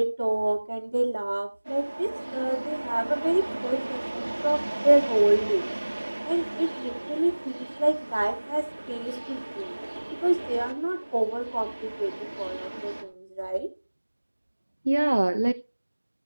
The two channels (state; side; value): inverted; both; correlation -1.00